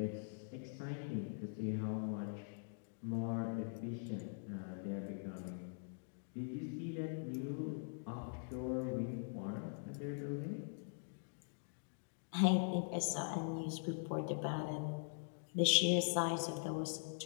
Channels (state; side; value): silent; right; digital silence